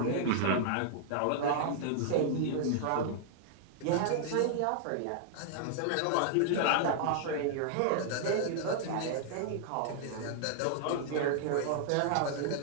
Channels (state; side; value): different; both; correlation -0.01